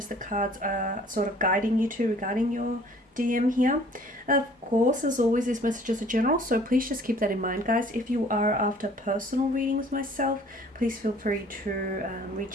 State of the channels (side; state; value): both; normal; correlation 0.54